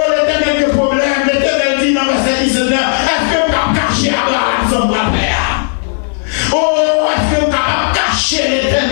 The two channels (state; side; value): silent; right; digital silence